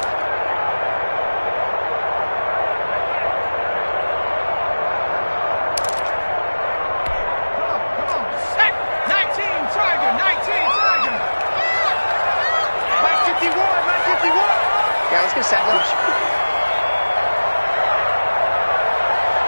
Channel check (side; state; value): both; inverted; correlation -1.00